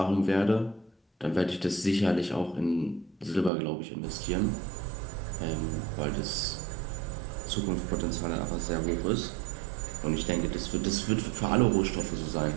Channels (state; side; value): drops out; left; at 3.5 s